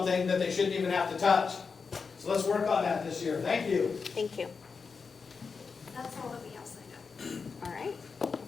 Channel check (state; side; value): quieter; right; 5.2 dB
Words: that they shouldn't even have to touch. So let's work on that this year. Thank you. Thank you. That's all that we have signed up. All right,